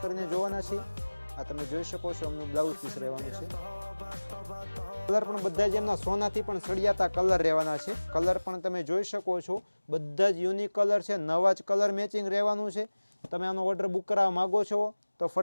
કરીને જોવાના છીએ. આ તમે જોઈ શકો છો એમનું બ્લાઉઝ પીસ રહેવાનું છે. કલર પણ બધા જ એમના સોનાથી પણ સળિયાતા કલર રહેવાના છે. કલર પણ તમે જોઈ શકો છો, બધા જ યુનિક કલર છે. નવા જ કલર મેચિંગ રહેવાનું છે. તમે આનો ઓર્ડર બુક કરાવવા માગો છો તો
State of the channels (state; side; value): inverted; both; correlation -1.00